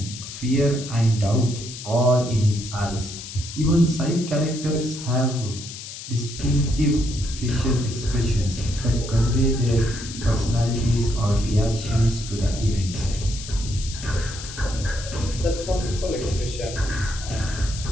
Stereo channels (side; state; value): left; noise; hiss, 11 dB below the sound